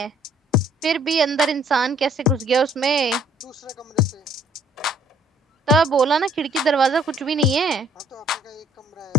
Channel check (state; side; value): normal; both; correlation 0.61